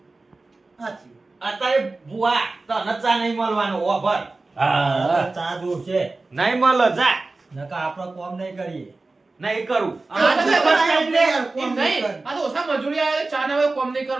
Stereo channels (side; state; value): left; quieter; 3.4 dB